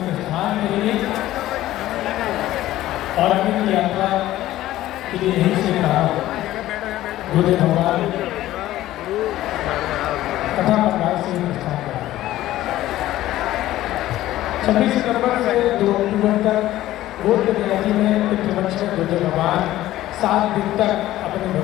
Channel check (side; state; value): right; quieter; 14.8 dB